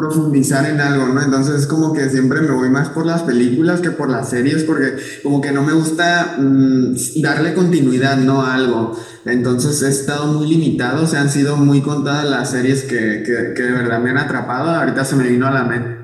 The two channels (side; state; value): both; identical; correlation 1.00